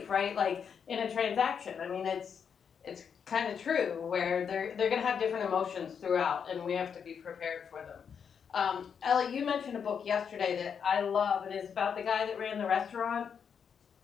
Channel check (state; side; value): quieter; right; 7.0 dB